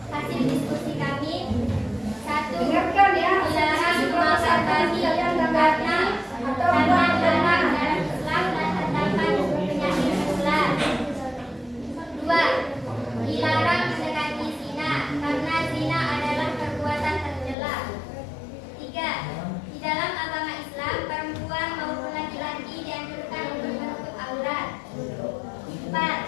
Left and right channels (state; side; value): drops out; right; at 17.6 s